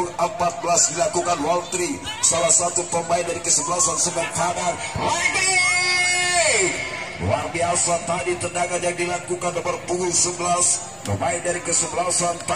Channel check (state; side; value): identical; both; correlation 1.00